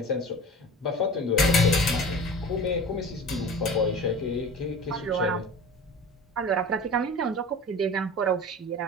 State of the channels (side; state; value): both; normal; correlation 0.37